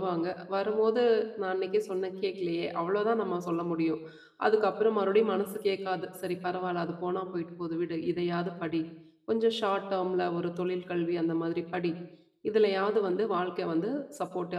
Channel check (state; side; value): identical; both; correlation 1.00